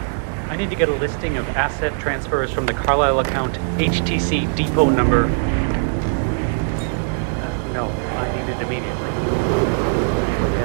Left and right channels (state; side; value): silent; left; 65 dB below the other